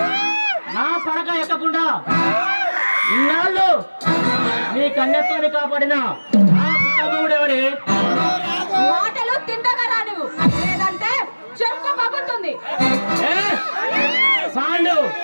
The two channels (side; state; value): both; inverted; correlation -1.00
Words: నా పడక ఎక్కకుండా ఇన్నాళ్ళు నీ కన్యత్వాన్ని కాపాడిన ఎవరే? మాటలు తిండగరా నువ్వు, లేదంటే చెంప పగులుతుంది. పాండు,